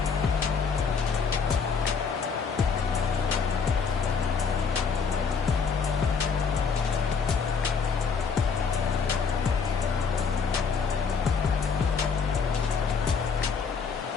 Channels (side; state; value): right; quieter; 5.6 dB